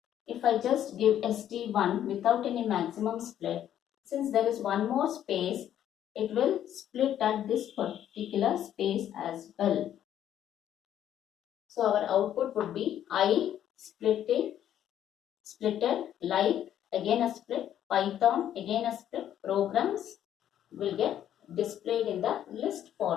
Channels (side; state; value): right; quieter; 10.8 dB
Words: if I just give ST1 without any maximum split, since there is one more space, it will split at this particular space as well. So our output would be I splitted, like again a split, Python again a split, programs will get displayed in the list